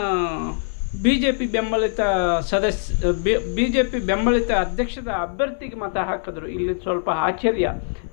ಬಿ ಜೆ ಪಿ ಬೆಂಬಲಿತ ಅಧ್ಯಕ್ಷದ ಅಭ್ಯರ್ಥಿಗೆ ಮತ ಹಾಕಿದ್ರು. ಇಲ್ಲಿ ಸ್ವಲ್ಪ ಆಶ್ಚರ್ಯ.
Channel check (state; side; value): silent; right; 57 dB below the other